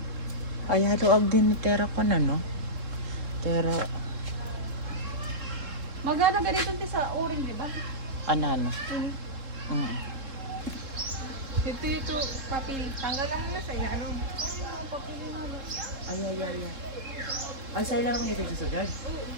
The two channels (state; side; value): late; left; 3.7 ms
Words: Ay, haluag din ni Tera ko na, no? Tera, Magana ganito sa uring, di ba? ano? Ito, papel. Tanggalan mo na sa inano. Ay. Ang sa'yo lang naman ito sa sugad.